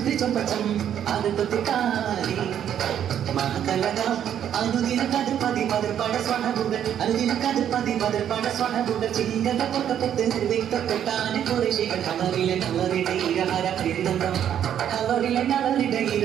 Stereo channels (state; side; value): quieter; left; 9.8 dB